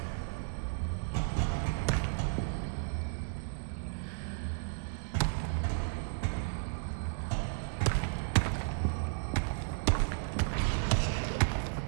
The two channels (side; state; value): left; silent; digital silence